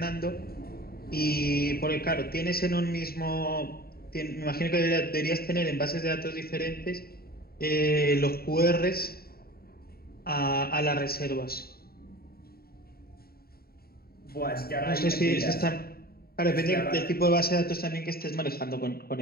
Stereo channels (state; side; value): late; right; 0.44 ms